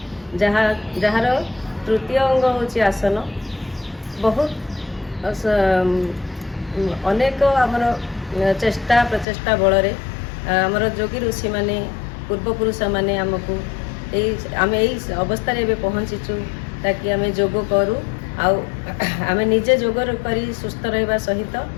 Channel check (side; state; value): right; drops out; at 9.2 s